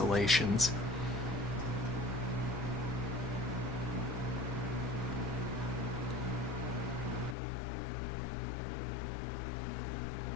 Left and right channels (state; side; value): drops out; right; at 7.4 s